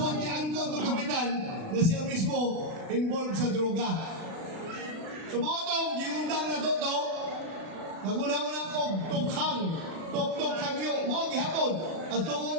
ni Angkol ng kapitan na siya mismo involved sa droga. Sumotong, giundang na to, naguna-unang kong tukhang, tok-tok hangyo, mga gihapon, at tungkol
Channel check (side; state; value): left; late; 36 ms